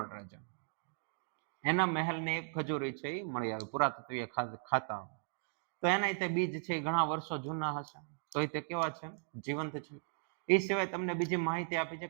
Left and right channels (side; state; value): left; silent; digital silence